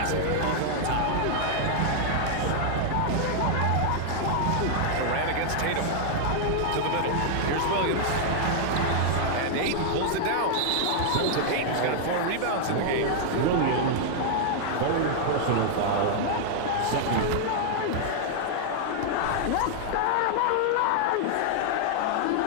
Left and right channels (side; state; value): both; different; correlation -0.01